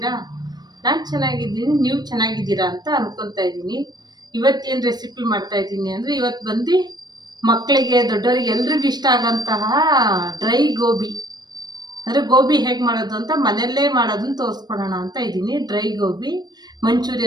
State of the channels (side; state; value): left; late; 0.20 ms